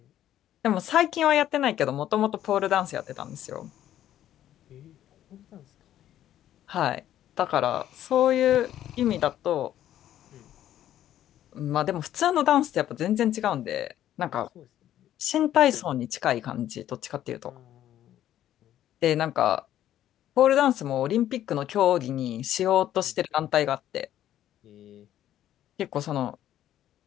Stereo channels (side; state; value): right; quieter; 12.0 dB